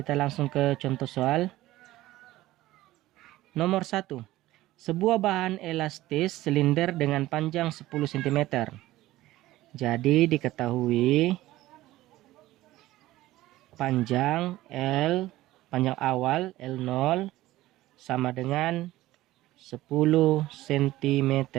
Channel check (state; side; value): quieter; left; 16.4 dB